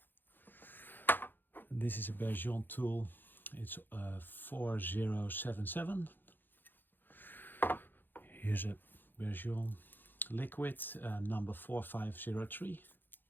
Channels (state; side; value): late; right; 0.093 ms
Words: And this is a Bergeon tool, it's 4077. Here's a Bergeon liquid number 4503.